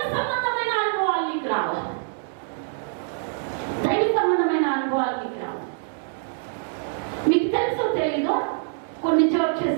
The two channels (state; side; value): silent; left; digital silence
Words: సంబంధమైన అనుభవాలు నీకు రావాలి. దైవ సంబంధమైన అనుభవాలు నీకు రావాలి. మీకు తెలుసో తెలీదో కొన్ని